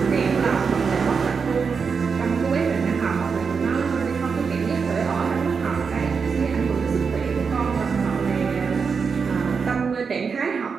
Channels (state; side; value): quieter; left; 5.6 dB